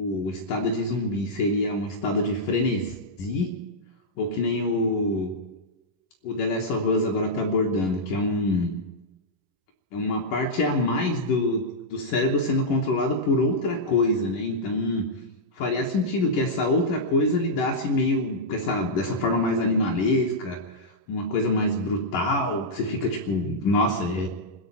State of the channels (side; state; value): right; late; 11 ms